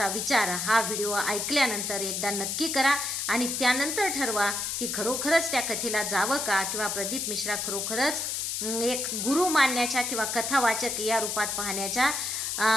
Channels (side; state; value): left; noise; hiss, 2 dB below the sound